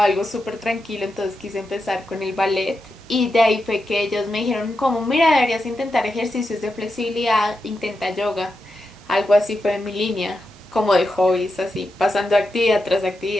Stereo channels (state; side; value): normal; both; correlation 0.88